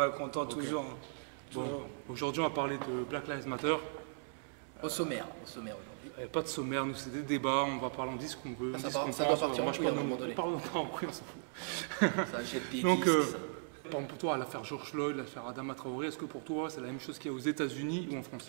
content okay. Toujours. Bon, aujourd'hui on va parler de Black Lives Matter. Au sommaire aujourd'hui. Pas de sommaire, nous c'est des débats, on va parler, on dit ce qu'on veut. Ça doit partir en couille à un moment donné. Pardon, pas en couille, on s'en fout. Ça jette des Donc, disques, par exemple pour toi, l'affaire George Floyd, l'affaire Adama Traoré, est-ce que pour toi c'est la même chose qu'il y a aux États-Unis ou en France?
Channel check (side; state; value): left; silent; digital silence